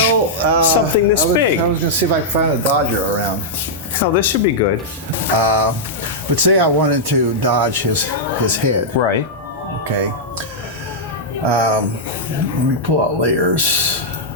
something this big? I was going to see if I could find a Dodger around. Oh, this should be good. But say I wanted to dodge his head. Right. Okay. Let me pull out layers.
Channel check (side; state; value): both; normal; correlation -0.08